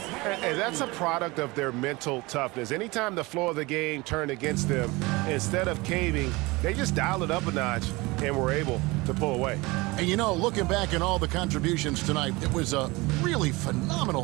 And that's a product of their mental toughness. Anytime the flow of the game turned against them, instead of caving, they just dialed it up a notch and were able to pull away. And you know, looking back at all the contributions tonight, it was a really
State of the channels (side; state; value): left; quieter; 23.1 dB